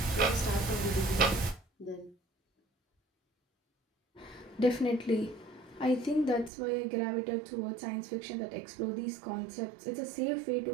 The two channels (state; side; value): drops out; left; at 6.5 s